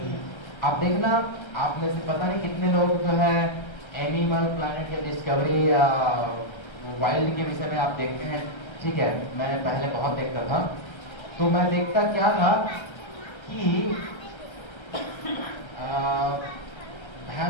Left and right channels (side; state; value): right; late; 1.3 ms